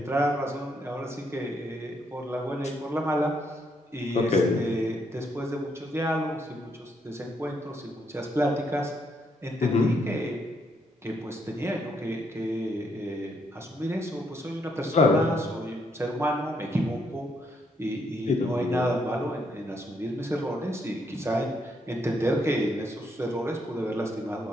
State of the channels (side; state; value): both; normal; correlation 0.74